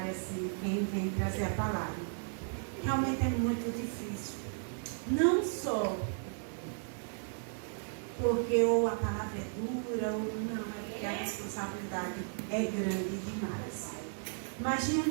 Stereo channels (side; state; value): left; silent; digital silence